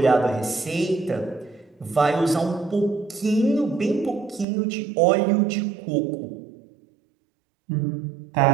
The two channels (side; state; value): left; drops out; at 4.5 s